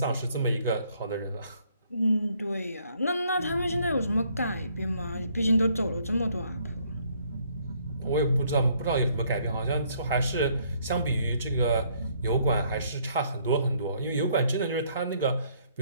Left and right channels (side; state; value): both; inverted; correlation -0.66